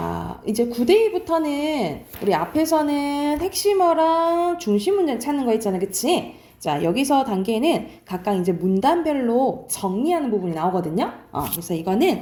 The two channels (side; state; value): both; identical; correlation 1.00